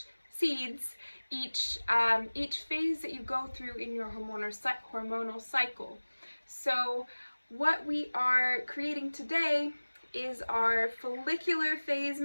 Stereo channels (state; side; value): inverted; both; correlation -1.00